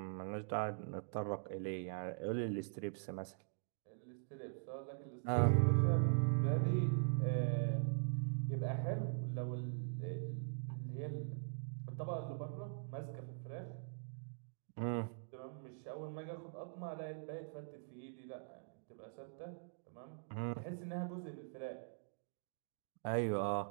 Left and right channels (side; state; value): left; silent; digital silence